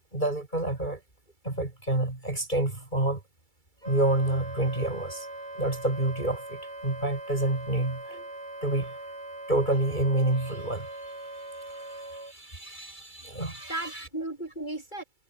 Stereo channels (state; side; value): late; right; 2.3 ms